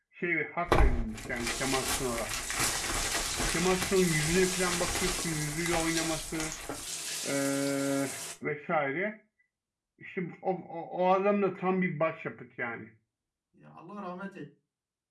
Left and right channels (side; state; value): both; identical; correlation 1.00